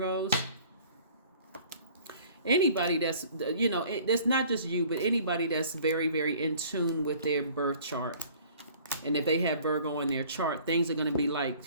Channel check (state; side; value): inverted; both; correlation -0.52